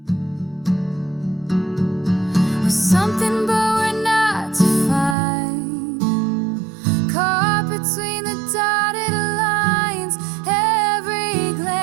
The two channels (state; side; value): drops out; left; at 5.2 s